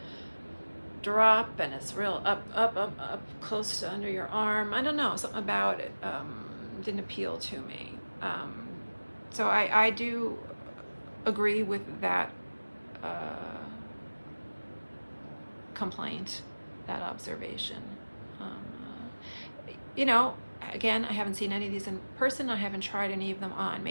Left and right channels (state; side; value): inverted; both; correlation -1.00